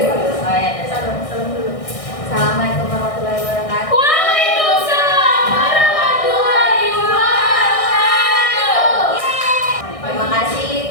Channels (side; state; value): right; late; 1.6 ms